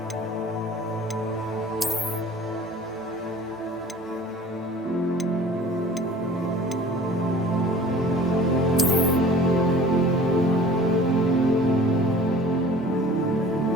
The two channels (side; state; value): both; normal; correlation 0.46